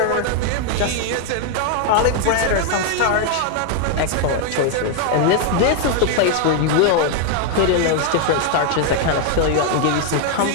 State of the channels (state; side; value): different; both; correlation 0.00